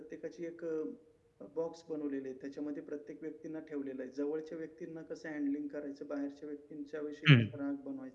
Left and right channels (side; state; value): both; identical; correlation 1.00